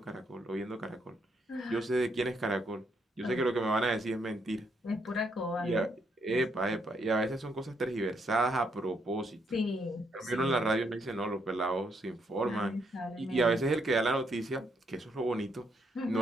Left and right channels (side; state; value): both; normal; correlation 0.75